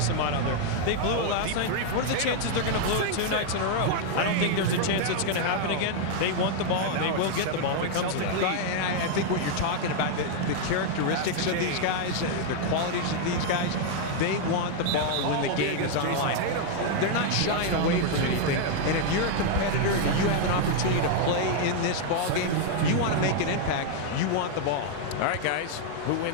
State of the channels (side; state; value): both; different; correlation 0.00